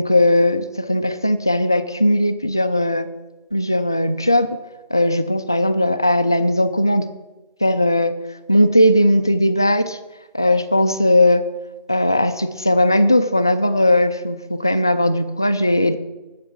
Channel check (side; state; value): both; inverted; correlation -0.88